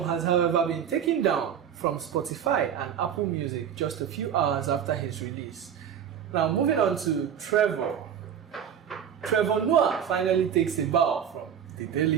has, however, been taken down from Spotify and Apple Music just a few hours after his release. Now, moving on to Trevor. Trevor Noah finally takes a bow from The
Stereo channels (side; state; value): left; quieter; 8.6 dB